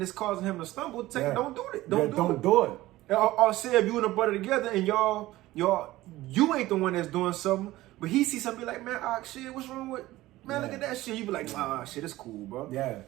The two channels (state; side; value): quieter; left; 17.0 dB